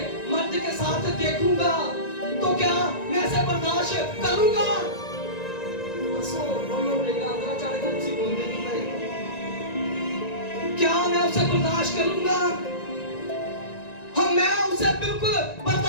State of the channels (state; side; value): late; right; 1.9 ms